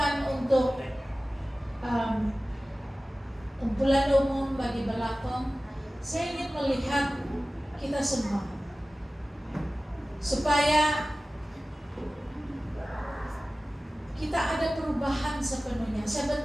untuk kumpulan umum bagi Belakong. Saya ingin melihat kita semua supaya kita ada perubahan sepenuhnya. Saya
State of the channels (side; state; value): both; normal; correlation 0.97